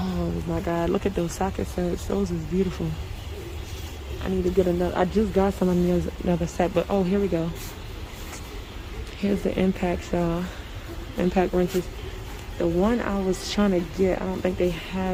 my God, look at those socket sets. Those is beautiful. I need to get another. I just got some of another set, but oh, here we go. Here's the impacts, y'all. Impact wrenches. The one I was trying to get, I don't think they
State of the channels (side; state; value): both; identical; correlation 1.00